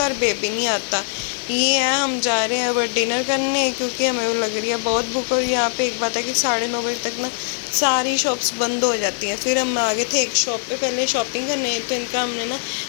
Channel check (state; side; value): silent; right; 64 dB below the other